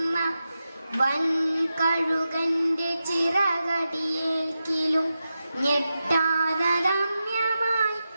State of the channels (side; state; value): both; inverted; correlation -0.91